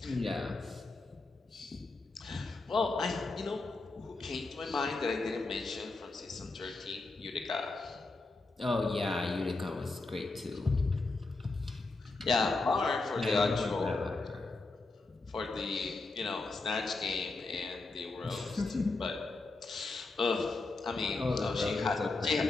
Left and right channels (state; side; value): quieter; right; 3.4 dB